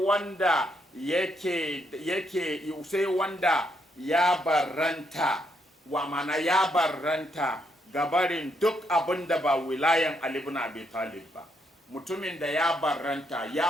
sai wanda ya barranta, wa mana ya barranta gabarin duk abin da ba wilayan Ali ibn Abi Talib ba. Mutumin da ya barranta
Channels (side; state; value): both; normal; correlation 0.76